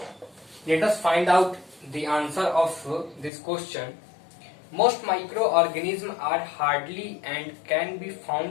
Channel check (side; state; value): right; drops out; at 3.3 s